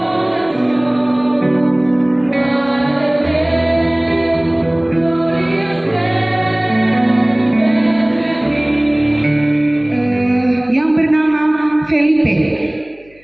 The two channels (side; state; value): left; noise; hum, 29 dB below the sound